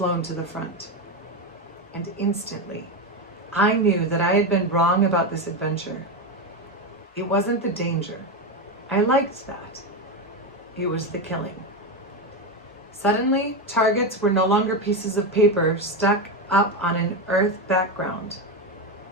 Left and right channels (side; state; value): both; normal; correlation 0.13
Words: to the front, and instantly, I knew that I had been wrong about this adventure. It wasn't the danger. I liked that. It was the killing. Suddenly, targets were no longer pieces of paper stuck up on an earth background.